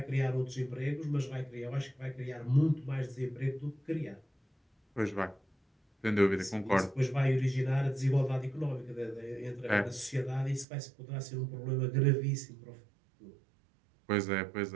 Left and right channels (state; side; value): drops out; left; at 10.7 s